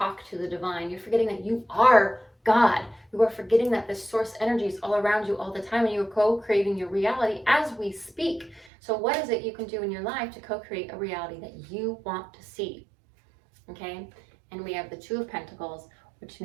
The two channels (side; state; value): left; drops out; at 8.7 s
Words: to the divine. You're forgetting that you are God. You are forgetting that this source energy is all around you all the time, and you are co-creating your reality as we speak. So what is it you can do in your life to co-create a reality that you want to see? Okay, and we have the Two of Pentacles, which